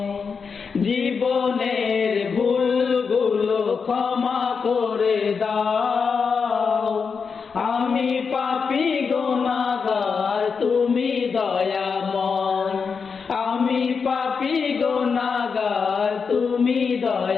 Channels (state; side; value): quieter; right; 5.6 dB